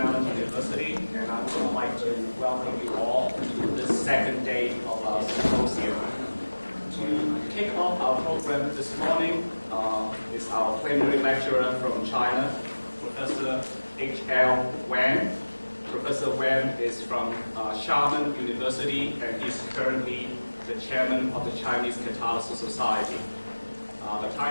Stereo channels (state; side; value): inverted; both; correlation -1.00